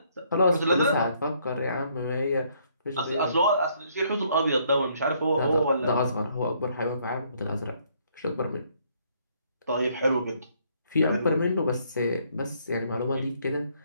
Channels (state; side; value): inverted; both; correlation -0.68